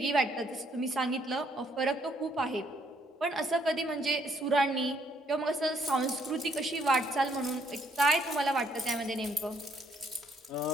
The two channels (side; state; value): both; normal; correlation 0.68